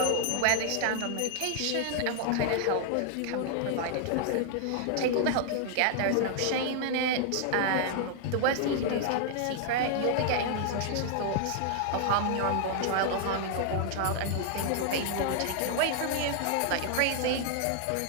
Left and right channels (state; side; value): different; both; correlation 0.00